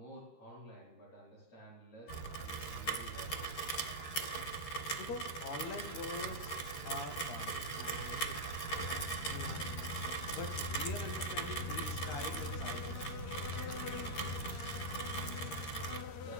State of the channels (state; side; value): late; right; 13 ms